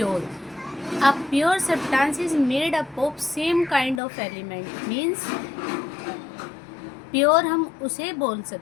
A pure substance is made up of same kind of element, means pure हम उसे बोल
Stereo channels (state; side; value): drops out; right; at 4.0 s